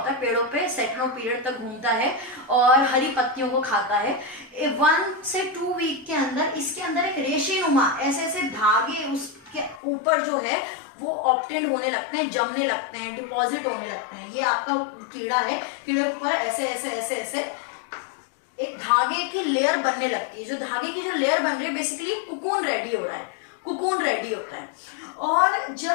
है, पेड़ों पे सेटनो पीरियड तक घूमता है और हरी पत्तियों को खाता है। 1 से 2 वीक के अंदर इसके अंदर एक रेशेनुमा ऐसे धागे उसके ऊपर जो है वो ऑब्टेन्ड होने लगते हैं, जमने लगते हैं, डिपॉजिट होने लगते हैं। ये आपका कीड़ा है, कीड़े के ऊपर ऐसे एक धागे की लेयर बनने लगती है। जो धागे की जो लेयर बन रही है, बेसिकली कुकून रेडी हो रहा है, कुकून रेडी होता है। और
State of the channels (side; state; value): right; drops out; at 9.8 s